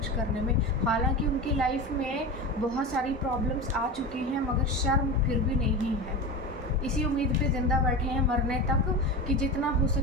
करने में। हालांकि उनकी लाइफ में बहुत सारी प्रॉब्लम्स आ चुकी हैं, मगर शर्म फिर भी नहीं है। इसी उम्मीद पे ज़िंदा बैठे हैं मरने तक कि जितना हो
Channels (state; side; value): normal; both; correlation 0.25